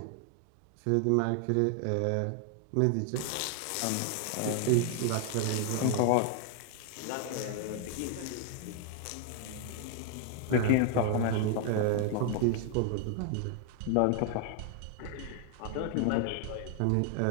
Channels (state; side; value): different; both; correlation 0.00